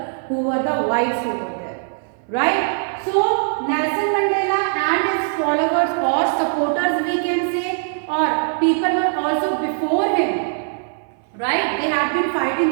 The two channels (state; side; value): silent; left; 60 dB below the other